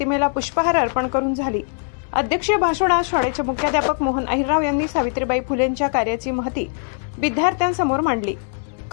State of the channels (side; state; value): right; silent; 65 dB below the other